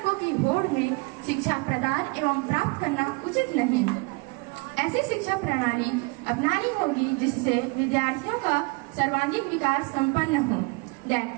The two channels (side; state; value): left; quieter; 27.8 dB